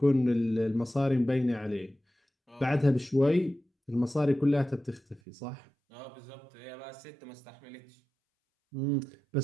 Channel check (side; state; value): left; drops out; at 5.2 s